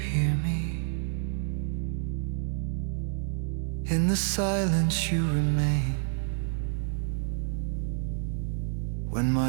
me, In the silence you remain. When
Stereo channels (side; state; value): left; silent; digital silence